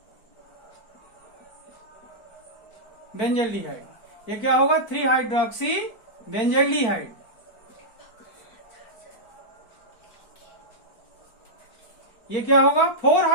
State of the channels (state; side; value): late; right; 4.5 ms